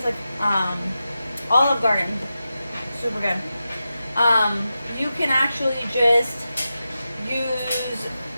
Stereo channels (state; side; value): inverted; both; correlation -0.91